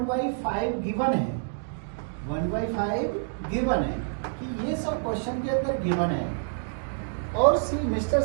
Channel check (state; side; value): silent; left; digital silence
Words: गिवन है। 1/5 गिवन है कि ये सब क्वेश्चन के अंदर गिवन है। और सी मिस्टर